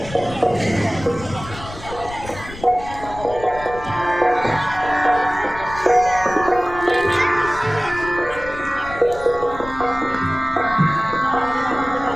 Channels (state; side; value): noise; left; rumble, 14 dB below the sound